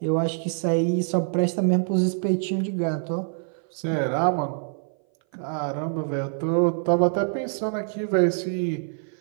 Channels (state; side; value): silent; left; 58 dB below the other